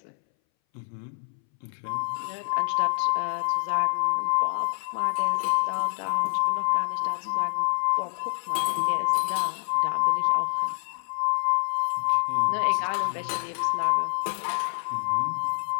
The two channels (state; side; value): silent; right; 61 dB below the other